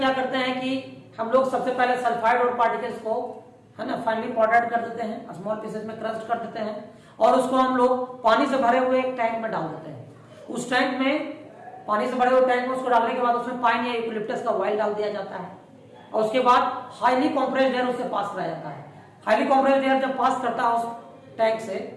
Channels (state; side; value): identical; both; correlation 1.00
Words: करते हैं कि हम लोग सबसे पहले सल्फाइड ओर पार्टिकल्स को है ना फाइनली पाउडर्ड कर देते हैं, स्मॉल पीसेस में क्रस्ट कर देते हैं, और उसको हम लोग पानी से भरे हुए एक टैंक में डाल देते हैं. उस टैंक में पानी से भरे हुए टैंक में उसको डालने के बाद उसमें पाइन या यूकेलिप्टस का ऑयल डाल दिया जाता है, और उसके बाद हाईली कंप्रेस्ड एयर उससे पास कराया जाता है. हाईली कंप्रेस्ड एयर जब पास करता है उस टैंक से